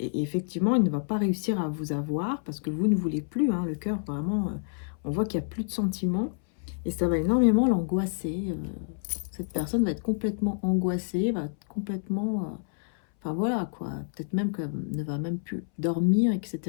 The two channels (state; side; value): silent; right; 59 dB below the other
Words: il ne va pas réussir à vous avoir parce que vous ne voulez plus. Hein, le cœur, vraiment, on voit qu'il n'y a plus de sentiments. Et ça va énormément l'angoisser. Cette personne va être complètement angoissée, va être complètement... enfin voilà, quoi. Peut-être même qu'elle ne va même plus dormir,